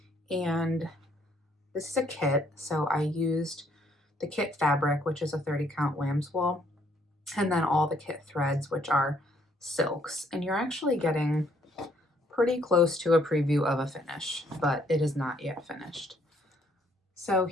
And this is a kit, so I used the kit fabric, which is a 30 count lamb's wool, and then all the kit threads, which are silks. And you're actually getting pretty close to a preview of a finish, but it is not yet finished. So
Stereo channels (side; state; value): both; normal; correlation 0.67